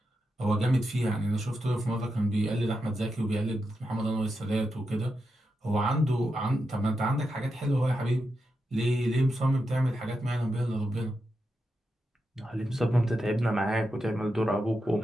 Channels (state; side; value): normal; both; correlation 0.87